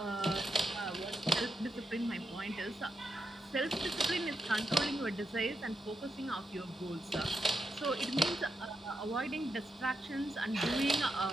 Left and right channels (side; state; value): both; normal; correlation 0.86